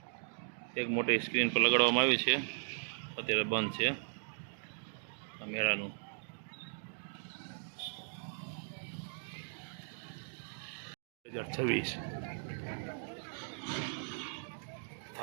એક મોટી સ્ક્રીન પર લગાડવામાં આવી છે, અત્યારે બંધ છે મેળાનું.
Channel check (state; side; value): silent; left; digital silence